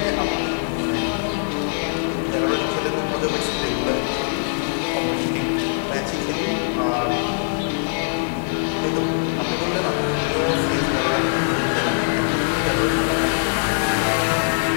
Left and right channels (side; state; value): right; silent; digital silence